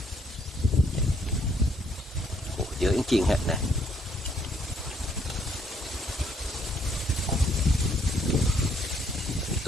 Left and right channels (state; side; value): normal; both; correlation 0.68